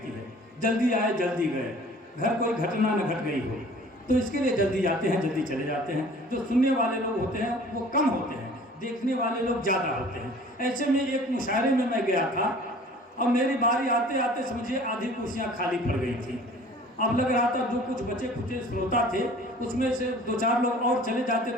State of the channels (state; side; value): normal; both; correlation 0.48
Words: है, जल्दी आए जल्दी गए, घर कोई घटना न घट गई हो, तो इसके लिए जल्दी जाते हैं, जल्दी चले जाते हैं। जो सुनने वाले लोग होते हैं वो कम होते हैं, देखने वाले लोग ज़्यादा होते हैं। ऐसे में एक मुशायरे में मैं गया था और मेरी बारी आते आते समझिए आधी कुर्सियाँ खाली पड़ गई थी। अब लग रहा था जो कुछ बचे खुचे श्रोता थे उसमें से 2-4 लोग और चले जाते